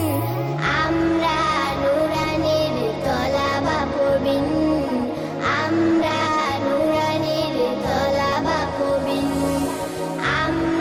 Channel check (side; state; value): both; identical; correlation 1.00